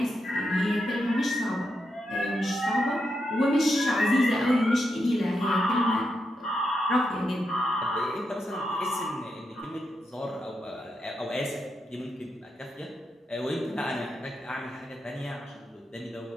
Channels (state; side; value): normal; both; correlation 0.85